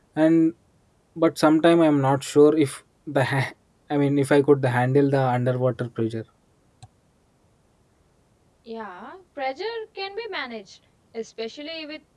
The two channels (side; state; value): both; identical; correlation 1.00